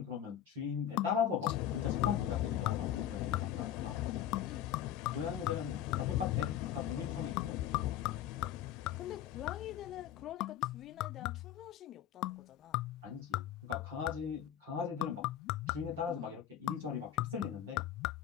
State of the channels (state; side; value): quieter; right; 10.6 dB